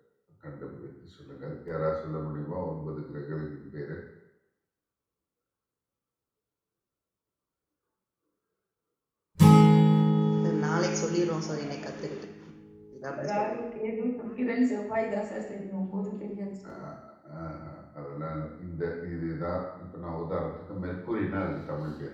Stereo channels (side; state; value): both; identical; correlation 1.00